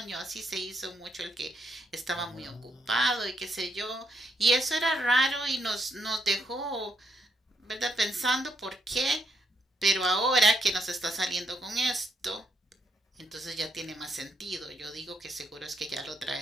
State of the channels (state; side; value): normal; both; correlation 0.77